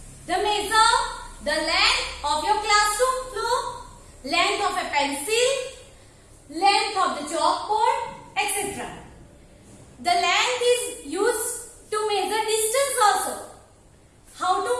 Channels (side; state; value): both; identical; correlation 1.00